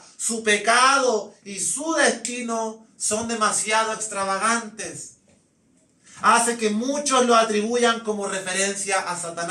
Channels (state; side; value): identical; both; correlation 1.00